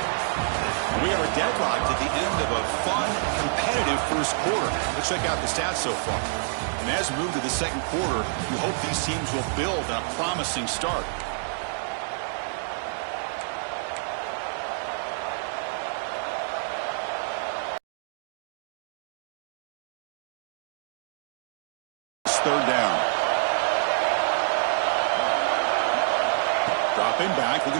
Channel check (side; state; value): left; silent; digital silence